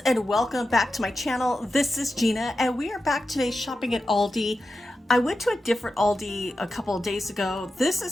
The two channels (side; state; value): both; normal; correlation 0.91